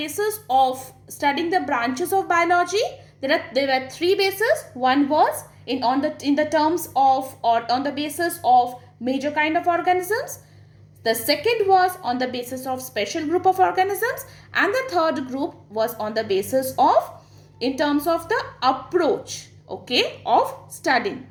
of studying the branches of biology? There were three bases. One was in the terms of, or on the basis of, major kind of organisms. The second was on the basis of special group of organisms, and the third group was on the basis of, in terms of the approach, okay, of studying.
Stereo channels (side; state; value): both; identical; correlation 1.00